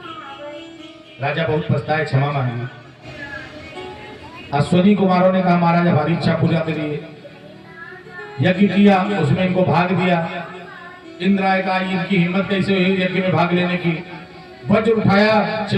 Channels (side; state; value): both; identical; correlation 1.00